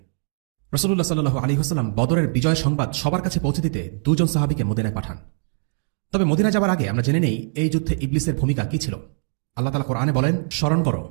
রাসূলুল্লাহ সাল্লাল্লাহু আলাইহি ওয়াসাল্লাম বদরের বিজয় সংবাদ সবার কাছে পৌঁছে দিতে 2 জন সাহাবীকে মদিনায় পাঠান। তবে মদিনা যাবার আগে আমরা জেনে নিই এই যুদ্ধে ইবলিসের ভূমিকা কি ছিল। আল্লাহ তাআলা কোরআনে বলেন, স্মরণ করো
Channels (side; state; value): left; silent; 64 dB below the other